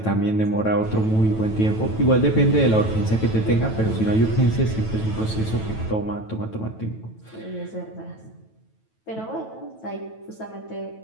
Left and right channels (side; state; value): right; late; 9.2 ms